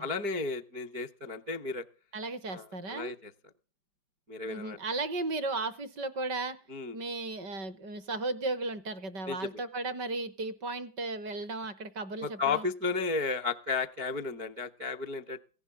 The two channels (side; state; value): left; late; 5.0 ms